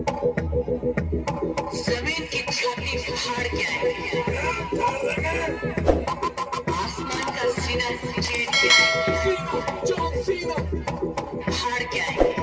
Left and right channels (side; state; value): both; identical; correlation 1.00